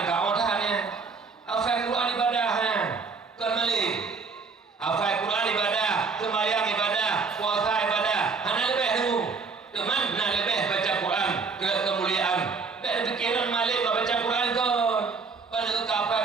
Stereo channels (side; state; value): left; quieter; 4.8 dB